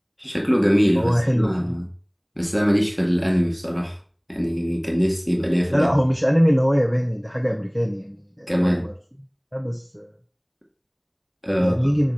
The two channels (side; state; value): both; identical; correlation 1.00